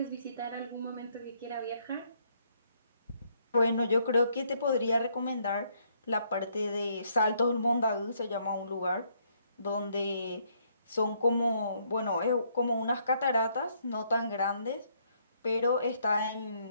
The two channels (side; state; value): both; inverted; correlation -0.70